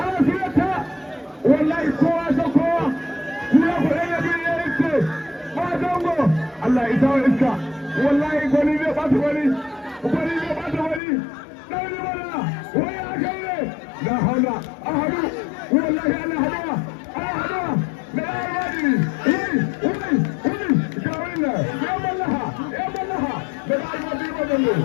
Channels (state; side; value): drops out; right; at 11.0 s